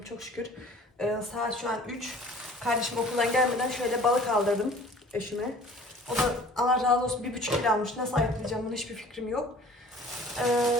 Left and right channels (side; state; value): both; normal; correlation 0.48